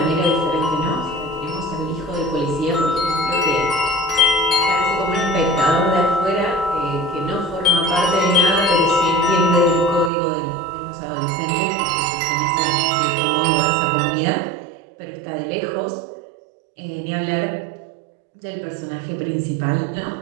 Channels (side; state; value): left; drops out; at 10.1 s